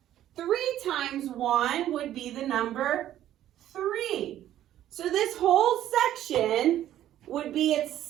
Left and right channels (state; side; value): quieter; left; 12.2 dB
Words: 3 times 1 would be the number 3. So this whole section would be